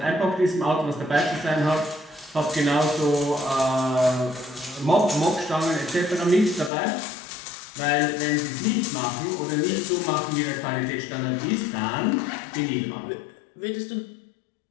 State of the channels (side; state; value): right; drops out; at 6.7 s